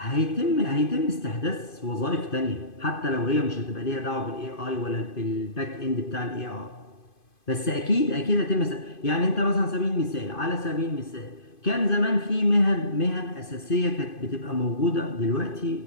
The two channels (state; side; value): late; right; 2.5 ms